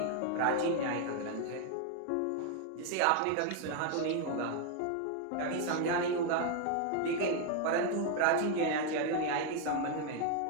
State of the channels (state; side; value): different; both; correlation 0.00